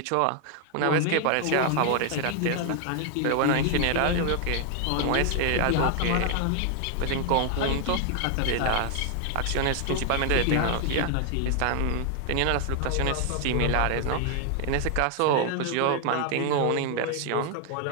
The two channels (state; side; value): different; both; correlation 0.00